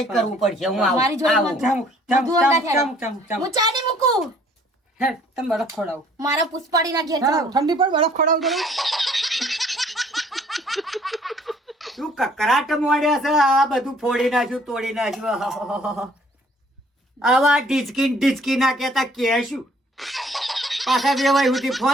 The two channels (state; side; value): normal; both; correlation 0.58